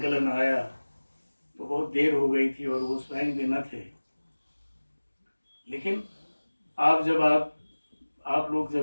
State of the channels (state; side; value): inverted; both; correlation -1.00